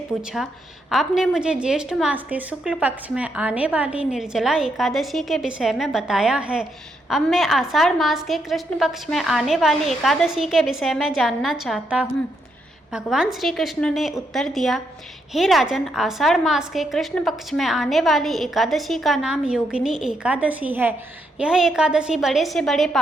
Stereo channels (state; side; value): normal; both; correlation 0.78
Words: आपने मुझे ज्येष्ठ मास के शुक्ल पक्ष में आने वाली निर्जला एकादशी के विषय में बताया है। अब मैं आषाढ़ मास के कृष्ण पक्ष में आने वाली एकादशी के विषय में जानना चाहता हूँ। भगवान श्री कृष्ण ने उत्तर दिया, हे राजन, आषाढ़ मास के कृष्ण पक्ष में आने वाली एकादशी का नाम योगिनी एकादशी है। यह एकादशी बड़े से बड़े